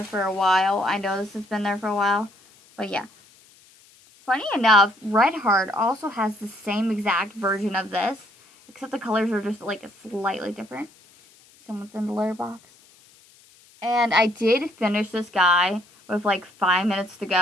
for a while. I know this has been there for a while. But yeah. Funny enough, Red Heart also has the same exact version of this. Except the colors are just like slightly different. Someone's in the litter box. And I did finish this guy with like 5 minutes to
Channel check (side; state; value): left; noise; hiss, 28 dB below the sound